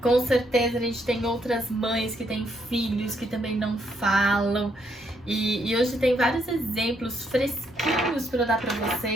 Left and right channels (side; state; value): both; normal; correlation 0.74